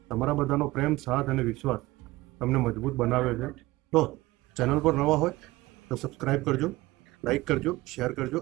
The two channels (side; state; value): left; quieter; 19.3 dB